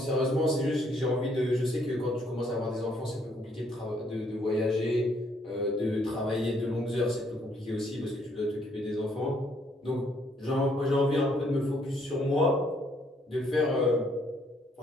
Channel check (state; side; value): normal; both; correlation 0.68